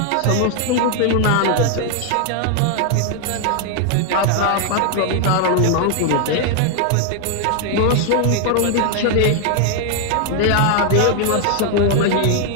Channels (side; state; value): both; different; correlation 0.00